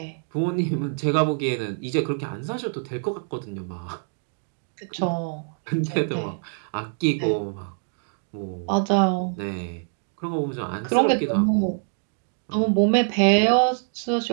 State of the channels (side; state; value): left; silent; 55 dB below the other